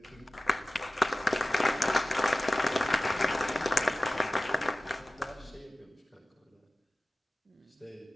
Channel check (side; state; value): both; normal; correlation 0.97